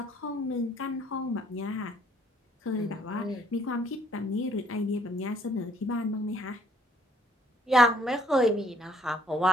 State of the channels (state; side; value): normal; both; correlation 0.63